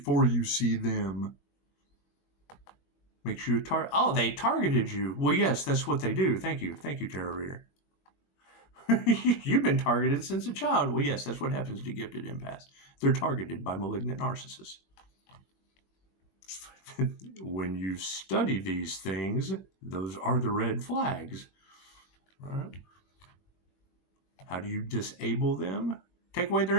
you see them. Makes you a target. Oh, they targeted you. Well, yes, that's what they do. Thank you. Thank you, tarot reader. You've been targeted since a child. Well, yes, that's what happens to gifted empaths. They're targeted by malignant narcissists. When you study these things, those are the red flags. Right? How do you disable them? Take away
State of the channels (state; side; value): late; right; 21 ms